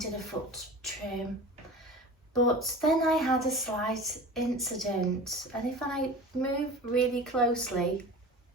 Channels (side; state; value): both; normal; correlation 0.36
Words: a foot trim. But then I had a slight incident, and if I move really closely,